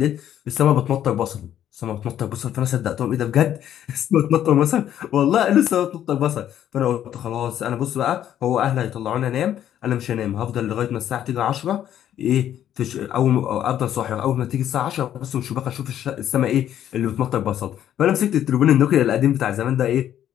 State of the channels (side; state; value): right; quieter; 10.9 dB